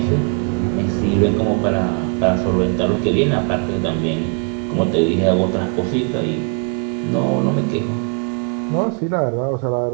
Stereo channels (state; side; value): quieter; left; 39.1 dB